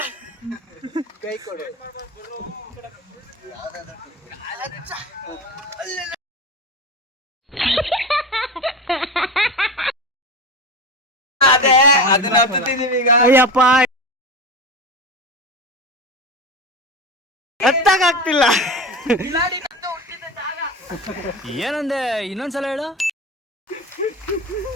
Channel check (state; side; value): normal; both; correlation 0.26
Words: ಕೈ ಕೊಡು. ಅದೇ ಅದನ್ನ ಹತ್ತಿದೀವಿ ಈಗ. ಅಯ್ಯಪ್ಪ ಹತ್ತಾಗ್ತಿಲ್ಲ. ಏನಂದೆ ಇನ್ನೊಂದ್ಸಲ ಹೇಳು.